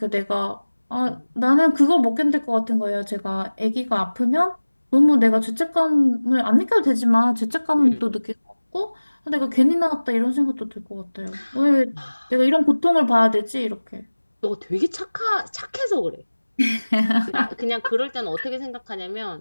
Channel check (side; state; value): both; inverted; correlation -1.00